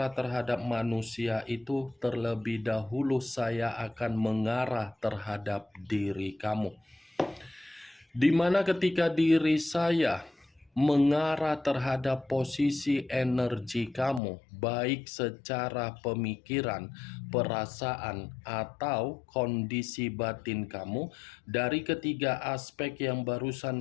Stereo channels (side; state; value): right; drops out; at 14.2 s